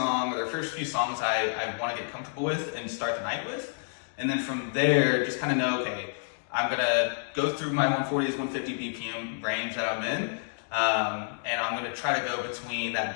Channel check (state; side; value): silent; right; digital silence